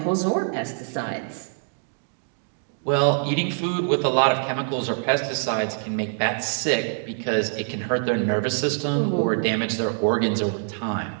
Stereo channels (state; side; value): silent; left; digital silence